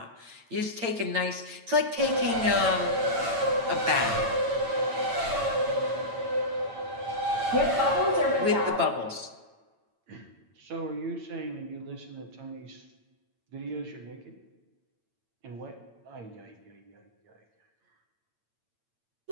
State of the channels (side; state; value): left; late; 8.9 ms